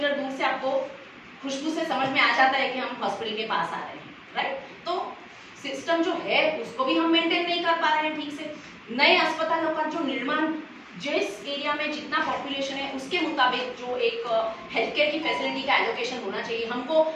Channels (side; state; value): both; identical; correlation 1.00